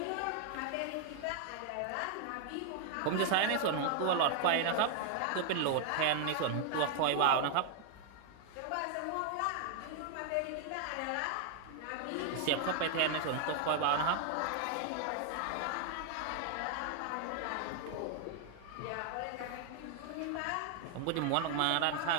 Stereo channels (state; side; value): different; both; correlation 0.00